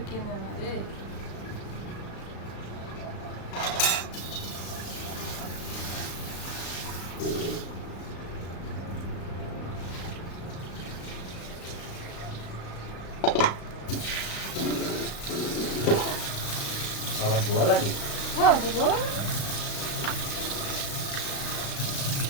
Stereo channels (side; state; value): right; late; 35 ms